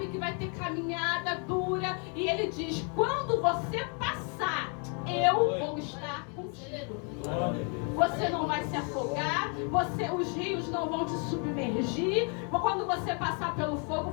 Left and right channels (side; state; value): right; quieter; 38.4 dB